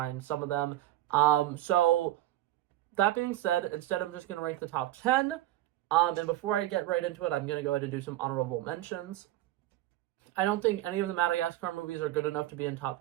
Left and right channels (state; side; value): quieter; left; 14.8 dB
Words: some of them. So that being said, instead I'm just going to rank the top 10. And before I get right into it, I'm going to go ahead and do some honorable mentions. I don't think any of the Madagascar movies are good enough to be in